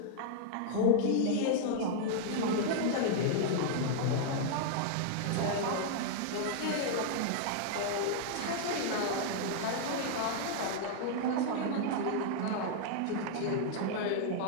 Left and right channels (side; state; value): both; different; correlation -0.01